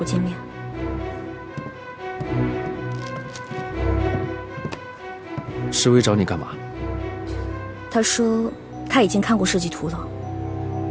儿见面。世威找你干嘛？他说他已经看过设计图了，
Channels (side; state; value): both; identical; correlation 1.00